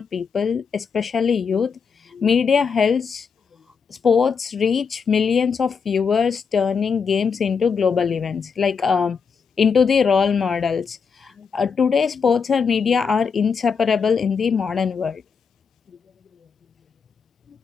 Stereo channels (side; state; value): right; quieter; 5.9 dB